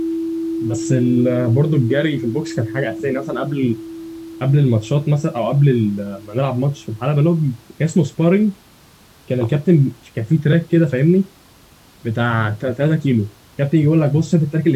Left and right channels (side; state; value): both; identical; correlation 1.00